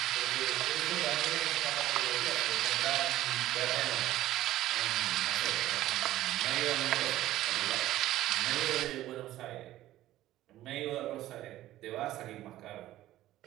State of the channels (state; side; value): quieter; left; 14.6 dB